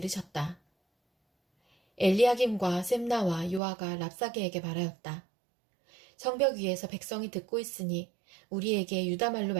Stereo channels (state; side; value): drops out; left; at 3.6 s